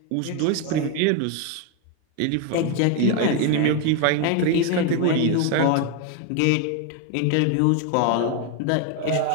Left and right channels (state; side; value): different; both; correlation 0.01